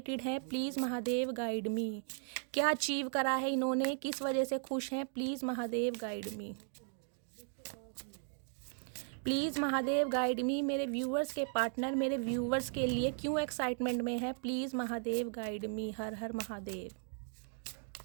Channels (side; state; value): left; silent; 53 dB below the other